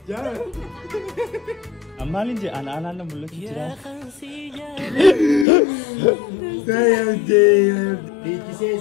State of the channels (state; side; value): drops out; right; at 5.5 s